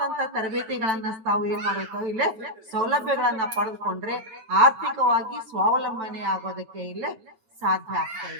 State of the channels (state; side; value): late; left; 9.0 ms